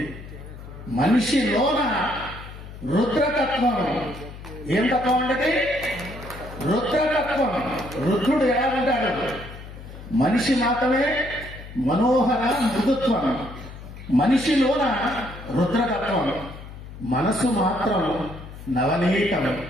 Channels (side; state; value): left; noise; hum, 14 dB below the sound